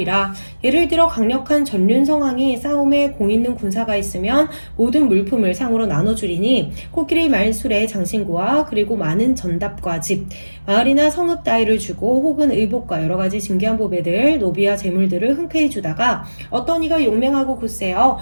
예를 들어 강력한 전륜성왕이 싸움에 공 있는 군사가 있으면 모든 물품을 상으로 나눠주리니 코끼리 말술의 장신구와 그리고 많은 전답과 집, 마을이나 성읍 따위를 주고 혹은 의복과 여러 가지 진귀한 보배들, 노비와 재물들을 흔쾌히 주다가 어떤 이가 용맹하고 굳세어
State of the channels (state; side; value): inverted; both; correlation -1.00